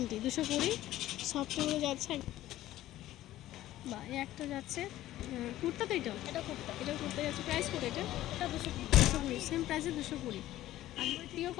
সফটগুলো যাচ্ছে। বা এই একটা যাচ্ছে কুর্তা, তো এটা কুর্তা যাচ্ছে। প্রাইস কত এটা? এটা 220, সেম প্রাইসে 220। আর পিওর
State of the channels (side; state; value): right; quieter; 14.5 dB